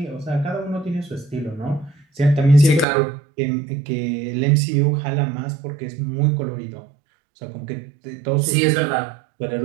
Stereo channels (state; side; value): drops out; left; at 2.9 s